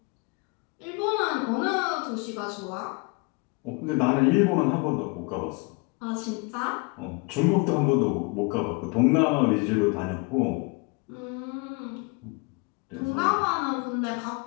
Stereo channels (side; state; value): right; quieter; 30.0 dB